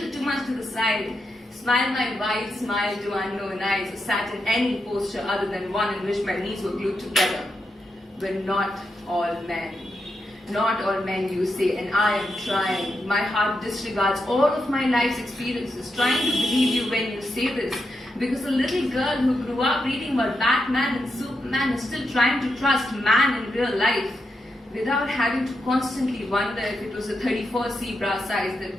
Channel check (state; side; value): normal; both; correlation 0.85